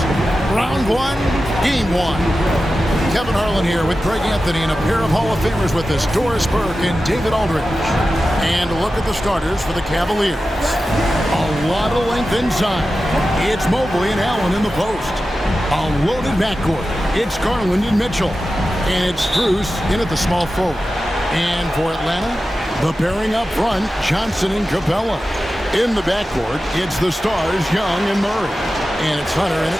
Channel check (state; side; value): normal; both; correlation 0.93